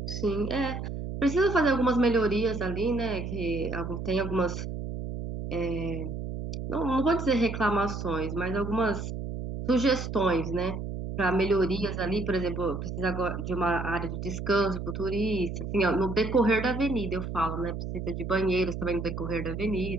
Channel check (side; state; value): right; noise; hum, 6 dB below the sound